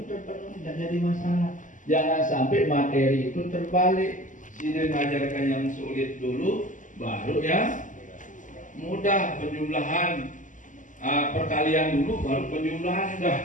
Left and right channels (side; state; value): right; late; 0.37 ms